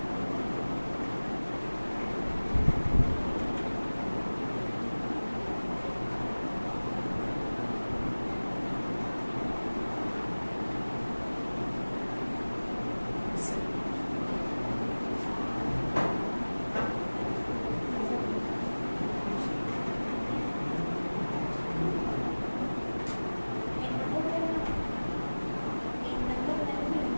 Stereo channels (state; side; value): inverted; both; correlation -1.00